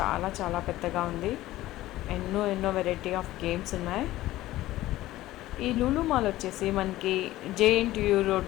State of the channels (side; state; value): right; quieter; 16.0 dB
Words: చాలా పెద్దగా ఉంది. ఎన్నో ఎన్నో వెరైటీ ఆఫ్ గేమ్స్ ఉన్నాయి. ఈ లులు మాల్ వచ్చేసి మనకి జేఎన్టీయూ